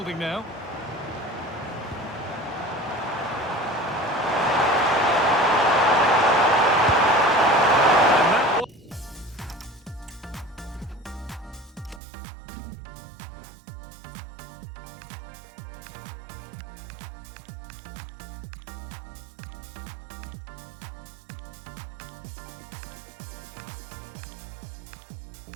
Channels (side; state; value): left; drops out; at 12.0 s